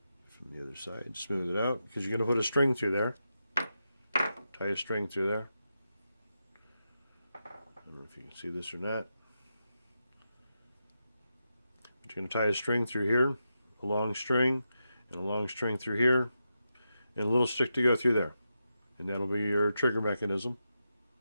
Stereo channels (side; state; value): both; inverted; correlation -0.87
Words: From the other side, smooth it out, because you're going to put a string through there. Tie a string through there. I don't know if you can see this or not. But you're going to tie a string through here, a long string, and a long string through here, and a little stick to go through there. And that'll be your trigger mechanism